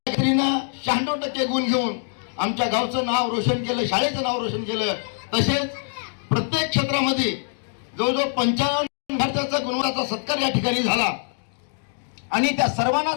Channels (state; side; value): silent; right; 63 dB below the other